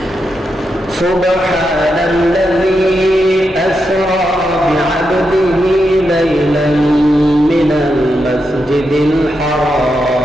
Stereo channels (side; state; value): both; normal; correlation 0.85